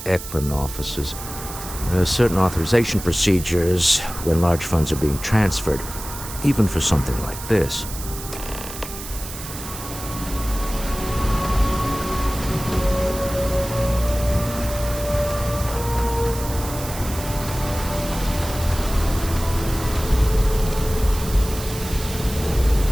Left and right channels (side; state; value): right; noise; hiss, 11 dB below the sound